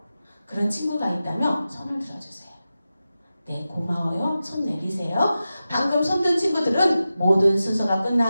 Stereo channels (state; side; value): inverted; both; correlation -0.93